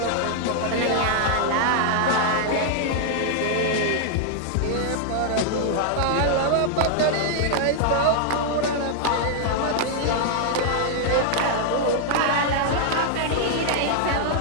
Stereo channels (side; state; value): both; different; correlation -0.01